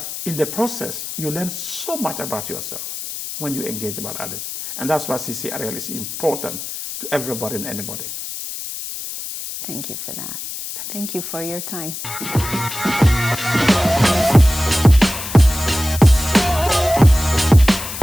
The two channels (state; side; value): noise; left; hiss, 8 dB below the sound